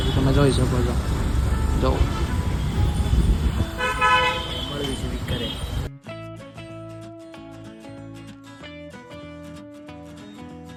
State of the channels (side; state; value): both; identical; correlation 1.00